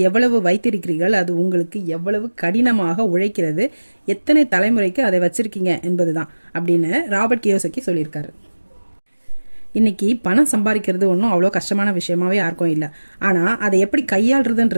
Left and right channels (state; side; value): inverted; both; correlation -1.00